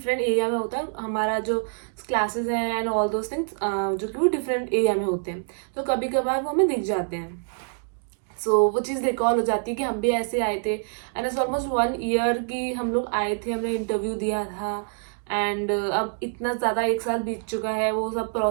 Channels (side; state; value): left; silent; 61 dB below the other